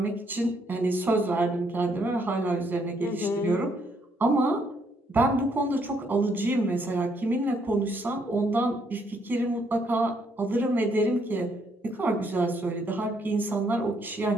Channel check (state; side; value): normal; both; correlation 0.71